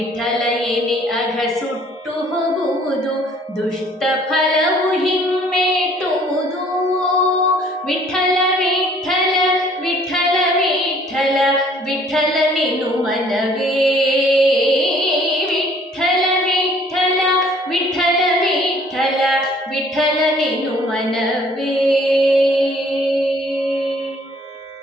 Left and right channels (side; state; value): both; normal; correlation 0.58